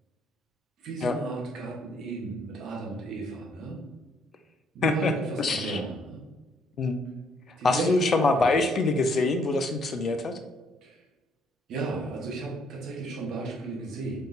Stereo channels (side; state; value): both; normal; correlation 0.68